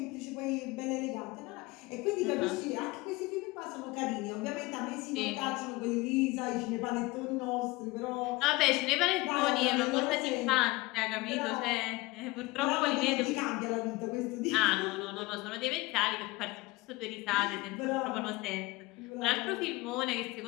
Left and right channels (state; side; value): quieter; right; 22.1 dB